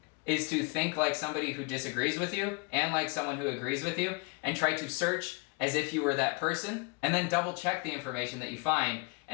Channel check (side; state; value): right; quieter; 31.6 dB